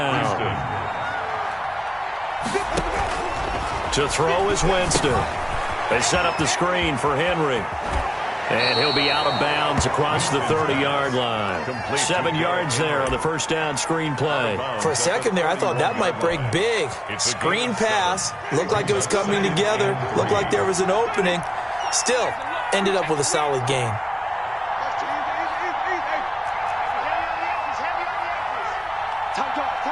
To throw is Winston. They set up the screen for Henry. And he'll be out of bounds across the 30-yard line. 7 yards there on the first down screen play. For a second there, I thought that might break big. Screen pass. Looked like it was coming together. Looked like there was an opening. Still, ended up with a solid game.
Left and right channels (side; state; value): both; identical; correlation 1.00